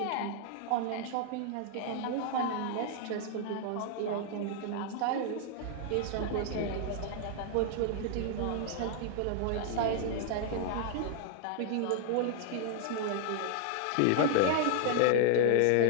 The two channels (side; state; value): both; different; correlation 0.00